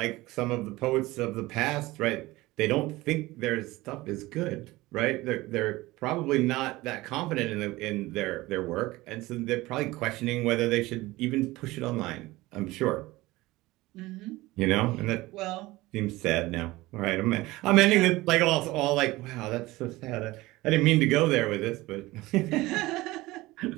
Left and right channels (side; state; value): left; quieter; 19.4 dB